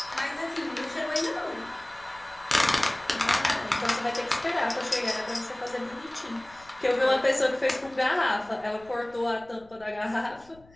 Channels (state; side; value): noise; left; rumble, 26 dB below the sound